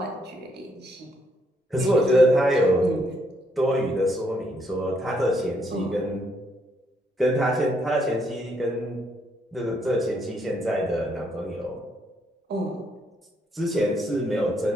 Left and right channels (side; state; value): both; normal; correlation 0.73